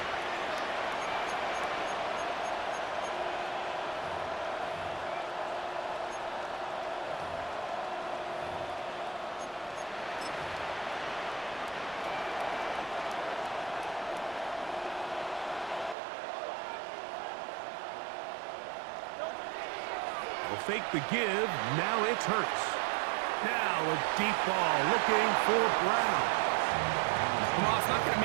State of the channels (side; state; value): left; drops out; at 16.0 s